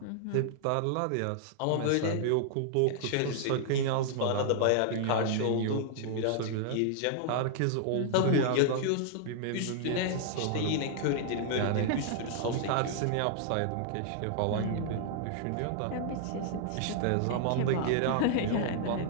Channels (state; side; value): different; both; correlation -0.01